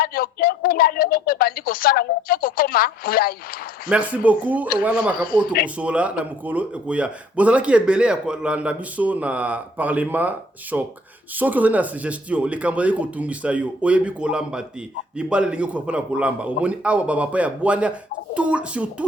merci beaucoup. Voilà makapo tokosola na mukolo ekoya. Bozala ki ebele ya kolanda biso na parlement choc. Soki ozali na suggestion, les cambriers ko tungisa yo, oyebi kolamba te. Libale lingi ko pona kolamba. Omoni awa baba pa ya bwania sur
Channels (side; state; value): both; normal; correlation 0.60